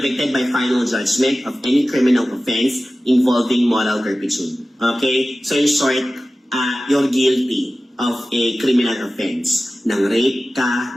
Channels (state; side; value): normal; both; correlation 0.96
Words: by final judgment of any criminal offense involving moral turpitude. Okay? So, in short, you're guilty of a criminal offense. Nang rape ka,